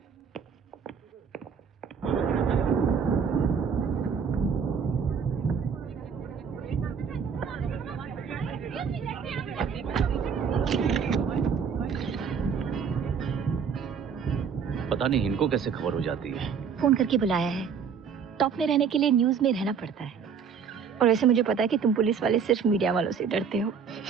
पता नहीं इनको कैसे खबर हो जाती है। फोन करके बुलाया है। टॉप में रहने के लिए न्यूज में रहना पड़ता है। और वैसे मुझे पता है कि तुम पुलिस वाले सिर्फ मीडिया वालों से डरते हो।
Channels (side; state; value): left; quieter; 6.6 dB